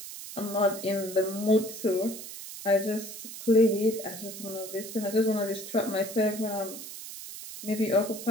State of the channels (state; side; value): noise; right; hiss, 11 dB below the sound